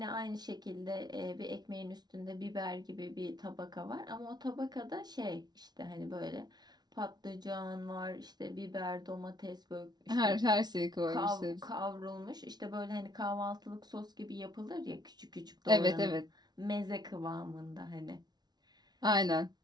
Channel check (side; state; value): left; late; 0.19 ms